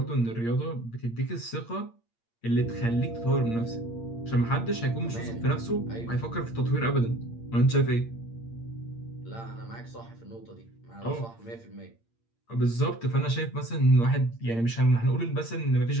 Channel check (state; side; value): late; right; 8.7 ms